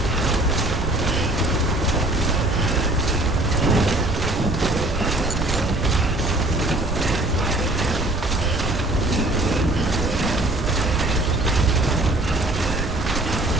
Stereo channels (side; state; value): right; noise; rumble, 6 dB below the sound